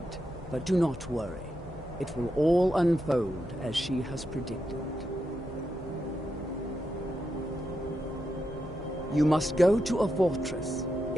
but do not worry. It will all unfold as she has predicted. You must go to a fortress,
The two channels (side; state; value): both; normal; correlation 0.85